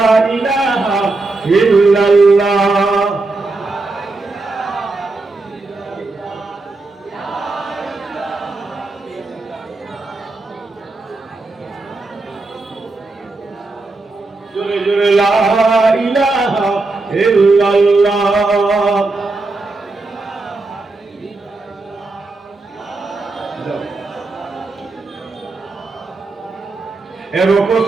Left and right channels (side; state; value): left; quieter; 3.4 dB